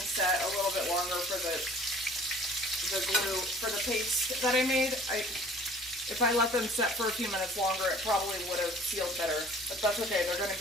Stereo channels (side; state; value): both; normal; correlation 0.50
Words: set a little bit longer for the glue, for the paste that I made. If I let them set for a few minutes longer, it probably would have sealed better. But that's okay, they're going to